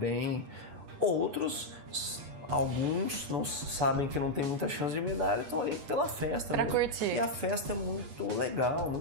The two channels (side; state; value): left; late; 8.1 ms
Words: Alguns não sabem que não tem muita chance de medalha, estão ali pela festa. Pra curtir. E a festa é muito legal,